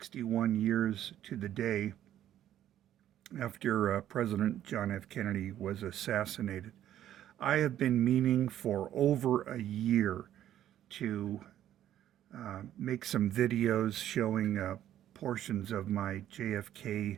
years to the day after President John F. Kennedy was assassinated. I have been meaning for over a year to make some videos showing portions of my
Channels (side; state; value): left; quieter; 11.7 dB